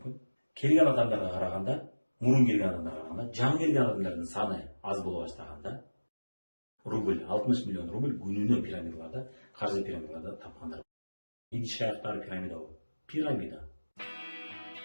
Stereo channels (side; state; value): both; inverted; correlation -1.00